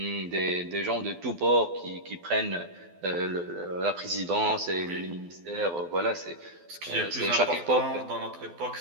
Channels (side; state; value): left; late; 12 ms